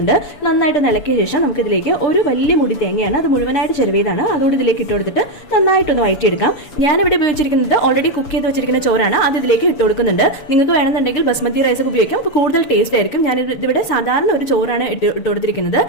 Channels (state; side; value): late; right; 7.0 ms